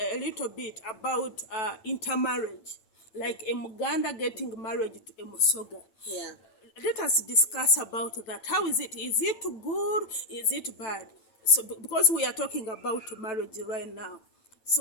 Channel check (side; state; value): right; late; 8.9 ms